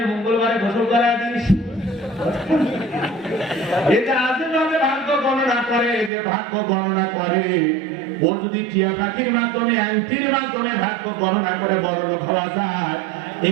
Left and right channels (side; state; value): left; drops out; at 6.1 s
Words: মঙ্গলবারে গোসল করায় দিস। এটা আজেবাজে ভাগ্য গণনা করে, যে ভাগ্য গণনা করে ওর যদি টিয়া পাখির মাধ্যমে, আংটির মাধ্যমে ভাগ্য গণনা করে বড় লোক হওয়া যায়,